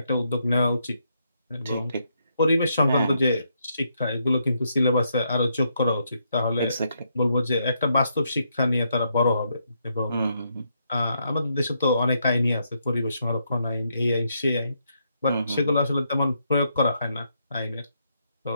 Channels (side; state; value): both; inverted; correlation -0.77